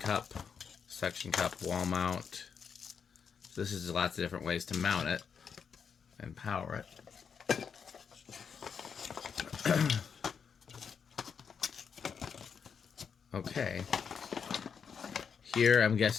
wall mount. So this is lots of different ways to mount it and power it. Okay. Here, I'm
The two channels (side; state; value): right; quieter; 6.6 dB